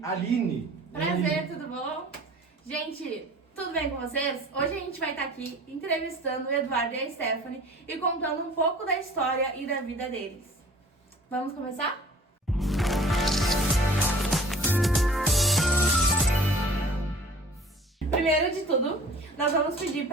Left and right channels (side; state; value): both; normal; correlation 0.47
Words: a Aline. Prazer, tudo bom? Gente, tudo bem com vocês? Hoje a gente vai estar aqui entrevistando o Eduardo e a Stephanie e contando um pouco da história e da vida deles. Vamos começar? Primeiro de tudo, nós vamos pedir